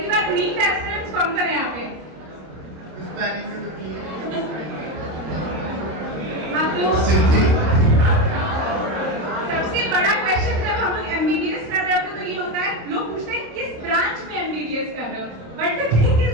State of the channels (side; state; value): left; late; 26 ms